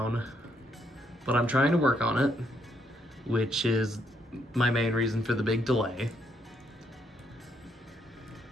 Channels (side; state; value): both; normal; correlation 0.74